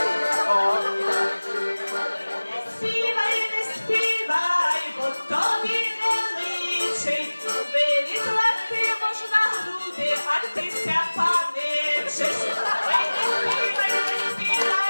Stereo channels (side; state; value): both; inverted; correlation -1.00